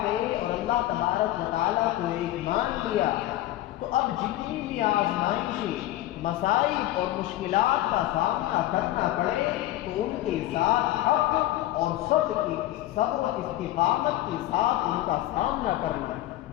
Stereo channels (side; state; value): right; quieter; 15.3 dB